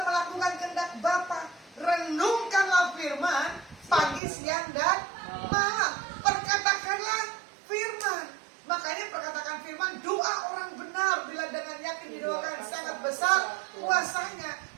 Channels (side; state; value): left; drops out; at 4.2 s